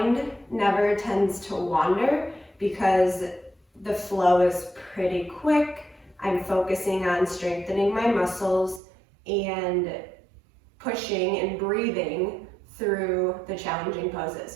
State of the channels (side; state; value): left; drops out; at 8.8 s